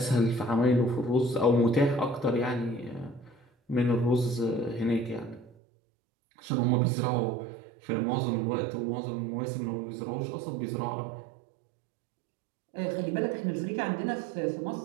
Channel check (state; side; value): drops out; left; at 5.5 s